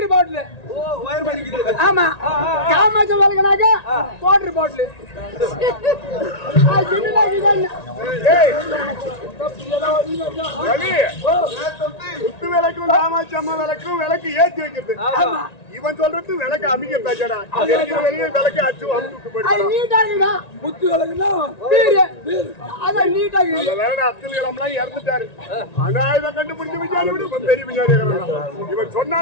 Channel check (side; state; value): right; late; 1.9 ms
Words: பாட்டில் வயர் பண்ணிக்கிட்டு ஆமா காமாட்சி வாழ்க்கைனாக்க வாட்டர் பாட்டில் குத்து விளக்கும் காமாட்சி அம்மா விளக்கும் விளக்கு ஏற்றி வைக்கிறது இவன் சொல்றது விளக்கு அமைக்க பேச்சடா வெளியே விளக்கு அச்சு அமுச்சு போயிட்டு நீட்டா இருக்குதா குத்து வழக்குன்னா பீர் அதான் நீட்டா இருக்குது வேற அப்துல் கலாம்லாம் இறந்துட்டாரு ஆனா இதை கண்டுபிடிச்சு விசாரி விடு பெரிய விசாரி இவன்